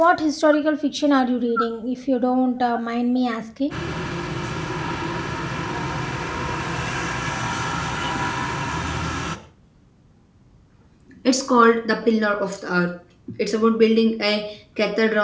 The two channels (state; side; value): identical; both; correlation 1.00